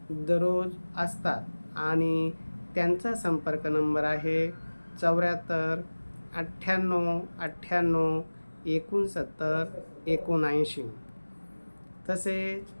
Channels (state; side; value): inverted; both; correlation -1.00